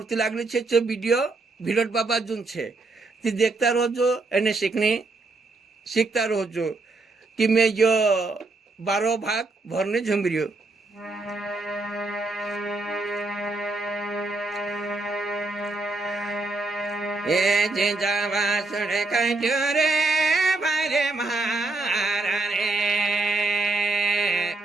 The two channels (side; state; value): left; quieter; 3.3 dB